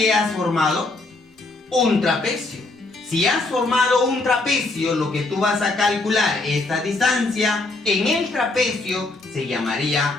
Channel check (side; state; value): right; quieter; 3.2 dB